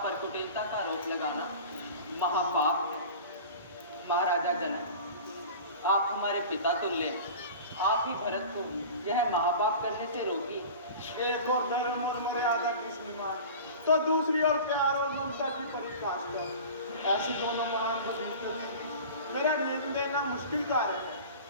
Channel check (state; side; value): inverted; both; correlation -0.38